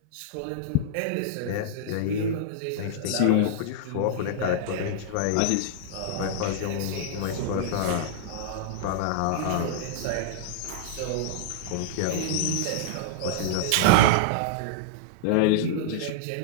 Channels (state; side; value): different; both; correlation -0.01